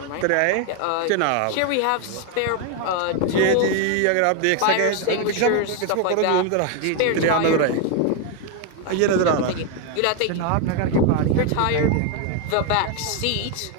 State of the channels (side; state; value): both; different; correlation 0.01